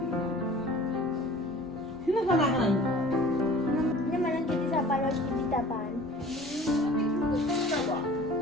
Sino ka na? Naman ang kiti sa parang kiti tapan.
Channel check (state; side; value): normal; both; correlation 0.45